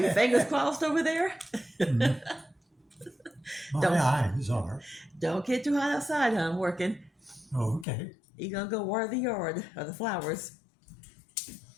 fingers crossed over there? My Don't eyes are. don't get too hot outside, huh? I'm working. Okay. You're going to go water the yard or the flowers.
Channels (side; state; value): right; drops out; at 7.9 s